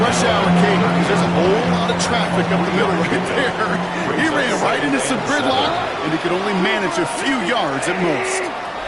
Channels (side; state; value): both; identical; correlation 1.00